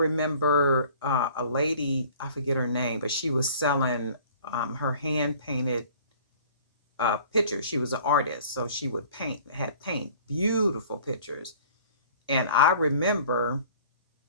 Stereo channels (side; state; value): both; inverted; correlation -0.50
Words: a lady, I forget her name, but she was selling her hand painted pictures. She was an artist, so she would had paint beautiful pictures. And I remember